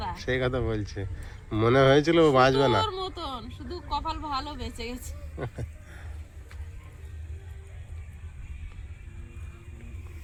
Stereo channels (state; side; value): identical; both; correlation 1.00